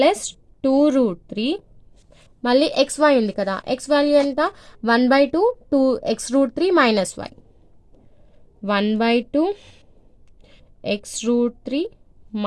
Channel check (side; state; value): both; identical; correlation 1.00